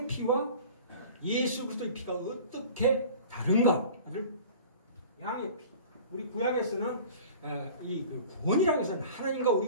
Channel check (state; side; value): inverted; both; correlation -0.43